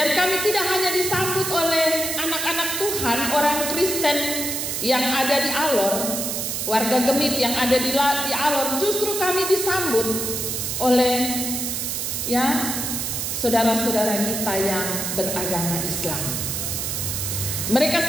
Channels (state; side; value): noise; right; hiss, 2 dB below the sound